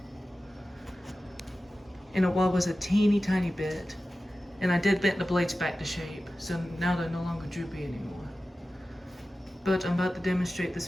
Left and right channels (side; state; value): both; normal; correlation 0.95